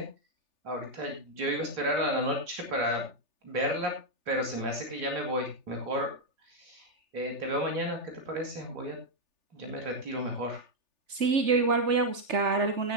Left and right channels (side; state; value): left; late; 3.4 ms